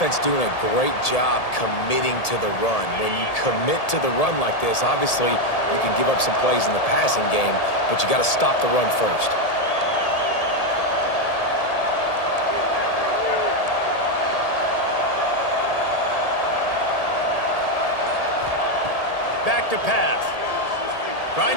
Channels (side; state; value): right; late; 1.8 ms